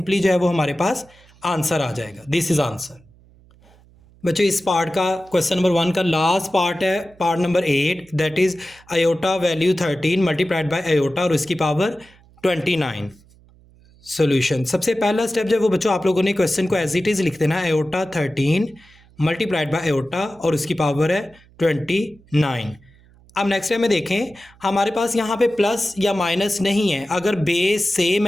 जो है वो हमारे पास आंसर आ जाएगा। This is answer. बच्चों इस पार्ट का क्वेश्चन नंबर 1 का लास्ट पार्ट है, part number 8, that is iota value 13 multiplied by iota और उसकी पावर 29। सॉल्यूशन, सबसे पहला स्टेप जो है वो बच्चों आप लोगों ने क्वेश्चन को एज इट इज लिख देना है, आयोटा 13 मल्टीप्लाइड बाय आयोटा और उसकी पावर है 29। अब नेक्स्ट टाइम में देखें, हमारे पास यहाँ पे प्लस या माइनस नहीं है, अगर बेस सेम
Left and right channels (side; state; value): right; noise; hum, 28 dB below the sound